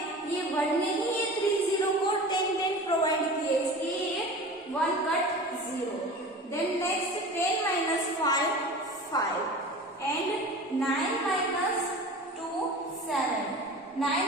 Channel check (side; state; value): both; normal; correlation 0.36